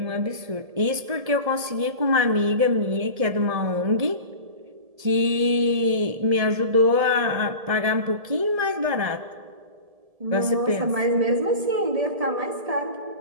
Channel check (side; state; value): left; late; 1.7 ms